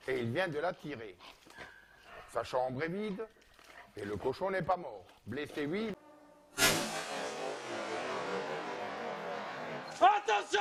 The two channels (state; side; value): identical; both; correlation 1.00